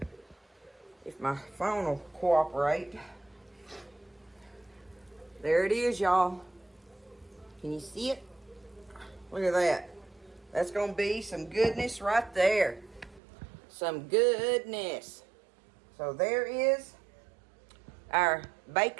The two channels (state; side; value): drops out; left; at 13.2 s